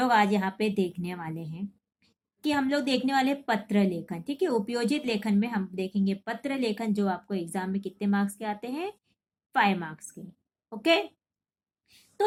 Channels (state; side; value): identical; both; correlation 1.00